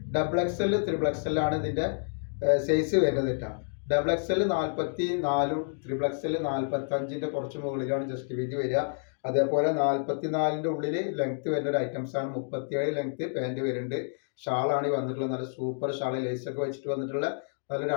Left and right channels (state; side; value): silent; right; digital silence